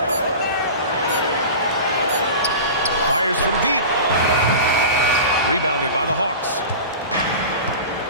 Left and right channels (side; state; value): both; inverted; correlation -0.33